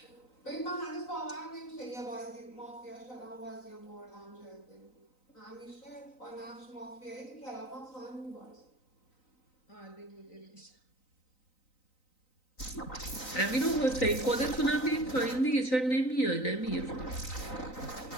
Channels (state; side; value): late; right; 3.9 ms